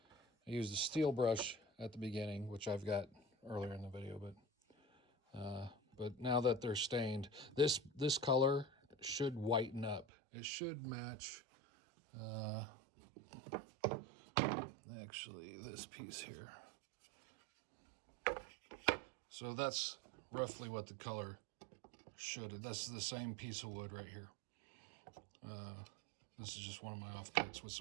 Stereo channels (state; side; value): drops out; left; at 10.1 s